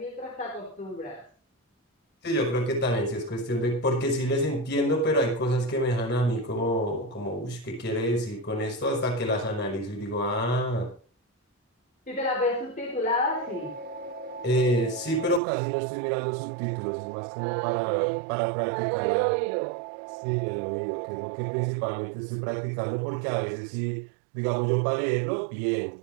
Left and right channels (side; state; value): left; drops out; at 15.4 s